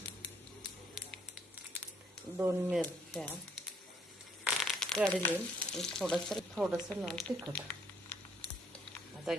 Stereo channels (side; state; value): both; normal; correlation 0.66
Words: 2 मिरच्या, कढली, थोडंसं लाल तिखट. आता